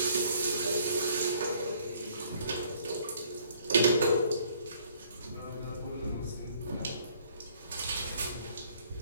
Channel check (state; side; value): inverted; both; correlation -0.61